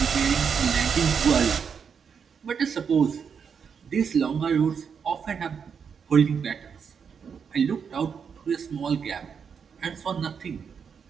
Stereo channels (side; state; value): left; quieter; 6.6 dB